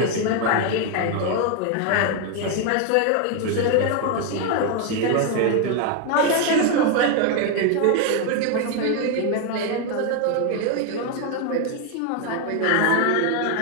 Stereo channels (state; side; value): different; both; correlation 0.01